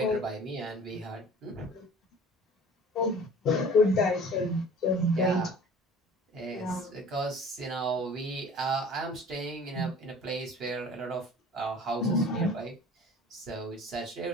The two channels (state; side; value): normal; both; correlation 0.46